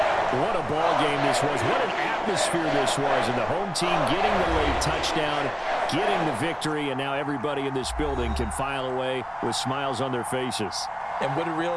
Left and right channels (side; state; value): both; identical; correlation 1.00